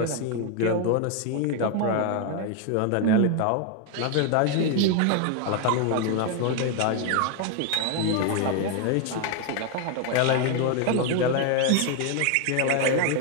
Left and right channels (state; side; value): different; both; correlation 0.01